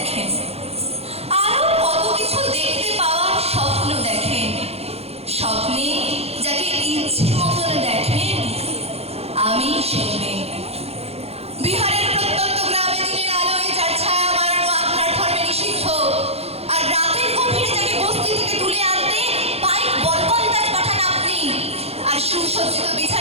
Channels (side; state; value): left; late; 0.29 ms